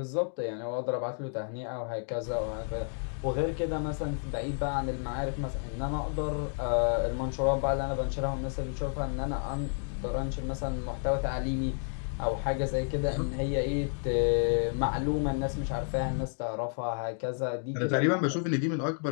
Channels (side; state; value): right; silent; 57 dB below the other